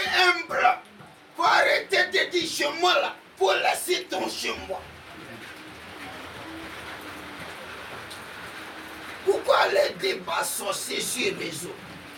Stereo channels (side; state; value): both; identical; correlation 1.00